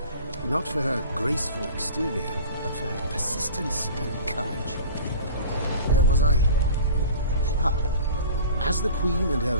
Not for her graceful exterior, but for her persistence and courage. Where was I? As the Queen and her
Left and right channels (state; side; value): inverted; both; correlation -0.40